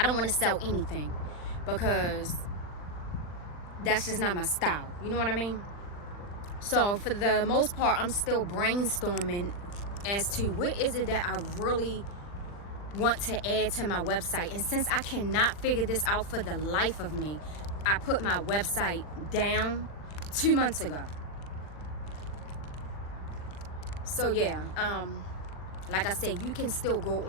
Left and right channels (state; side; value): late; right; 40 ms